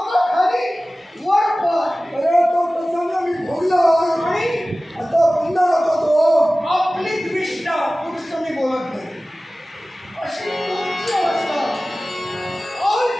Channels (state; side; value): normal; both; correlation 0.97